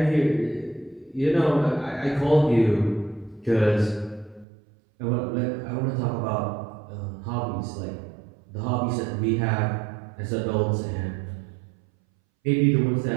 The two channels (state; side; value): drops out; left; at 4.5 s